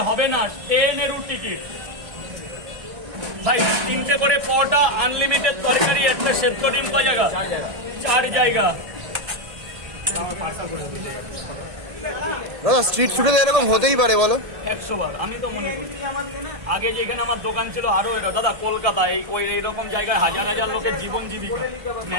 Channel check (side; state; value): left; late; 1.7 ms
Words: হবে না ট্রেনেরও টিকিট। ভাই 3টে করে পরোটা, আনলিমিটেড তরকারি, একটা সেদ্ধ ডিম জায়গা 4 জায়গা। দাদা স্ট্রিট ফুডে এরকম হতেই পারে বলো? 100 বার আমি তো মনে করি। আগে যেখানে আমার দোকান ছিল আরো এরা দাদা কলকাতা এইরকম জায়গায় হাজার হাজার লোকের জীবন জীবিকা,